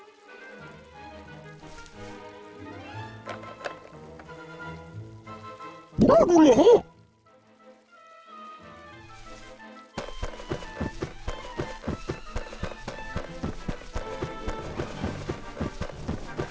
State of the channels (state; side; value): identical; both; correlation 1.00